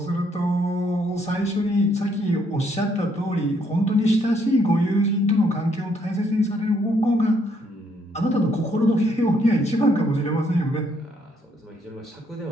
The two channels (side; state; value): both; normal; correlation 0.70